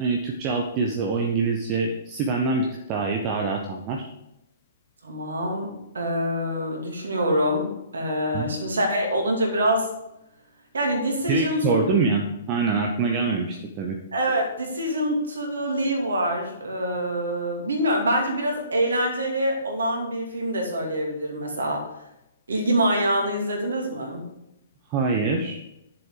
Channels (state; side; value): inverted; both; correlation -0.50